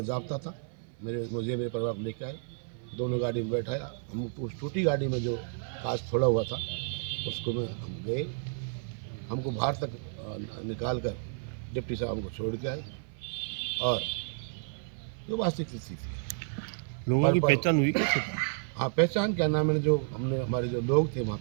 जाब्ता था, मुझे मेरे परिवार को लेके आए, दोनों गाड़ी में बैठाया। हम उस टूटी गाड़ी में जो कांच थोड़ा हुआ था उसको में हम गए, हमको बाहर तक निकाल कर डिप्टी साहब हमको छोड़ के आए। और जो वास्तविक स्थिति थी, लोगों की पहचान हुई कैसे? हाँ, पहचान क्या नाम है, जो हमने हमारे जो लोग थे वहाँ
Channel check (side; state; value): left; silent; 57 dB below the other